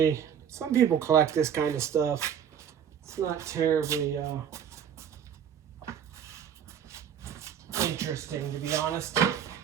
some people collect this kind of stuff. It's not terribly interesting, to be honest.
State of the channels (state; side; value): quieter; left; 8.5 dB